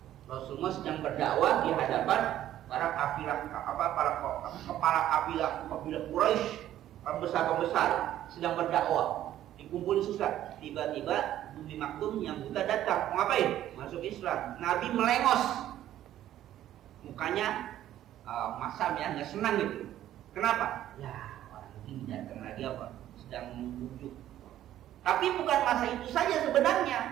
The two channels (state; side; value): quieter; left; 12.5 dB